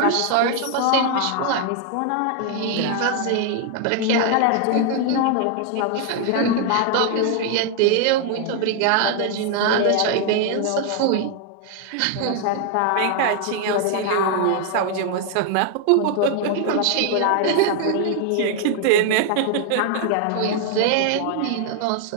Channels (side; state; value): both; different; correlation 0.00